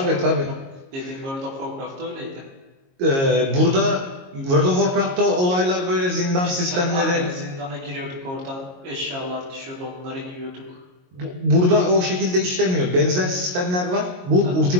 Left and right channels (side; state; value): left; late; 22 ms